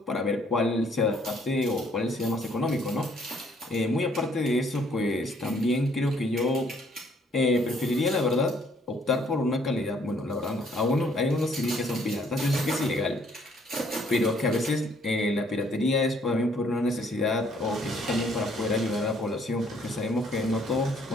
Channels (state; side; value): normal; both; correlation 0.64